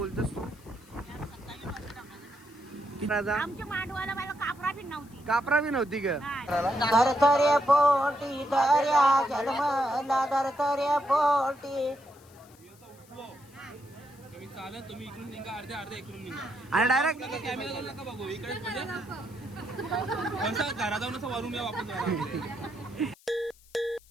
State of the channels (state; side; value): noise; left; hiss, 27 dB below the sound